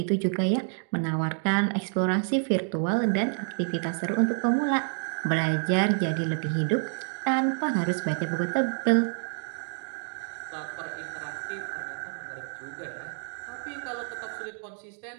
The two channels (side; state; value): left; silent; 59 dB below the other